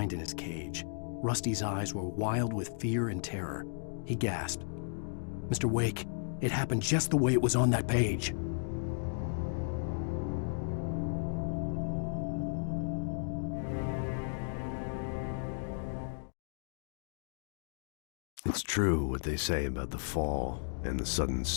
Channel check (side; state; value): right; silent; digital silence